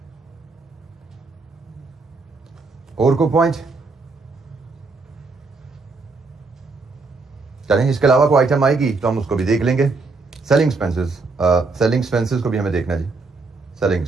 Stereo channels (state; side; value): quieter; left; 3.9 dB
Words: और कोई पॉइंट? चलें, इसके अलावा कोई आइटम आएगी तो हम उसको भी देख लेंगे। सेलिंग एक्सपेंसेस, सेलिंग एक्सपेंसेस को भी हमें देखना जी। Selling